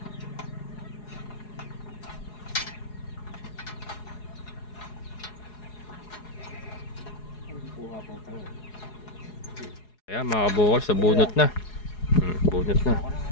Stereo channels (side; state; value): right; late; 4.8 ms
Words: Ayan mga kabokals, sa bunot na. Bunot na.